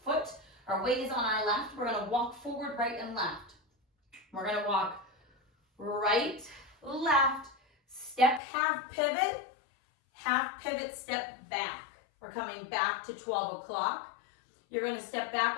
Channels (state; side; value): drops out; right; at 8.4 s